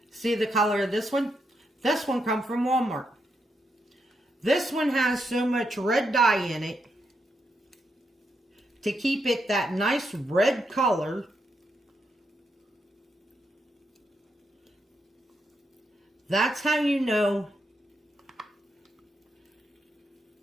See the color of this one? This one come from Walmart. This one has so much red dye in it to keep it that nice red color. That's how you know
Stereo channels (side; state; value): both; normal; correlation 0.81